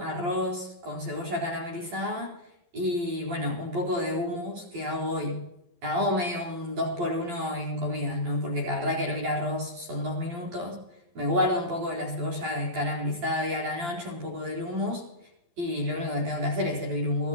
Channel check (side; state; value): left; late; 12 ms